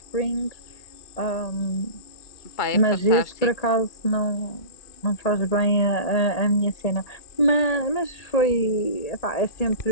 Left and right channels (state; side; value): late; right; 1.8 ms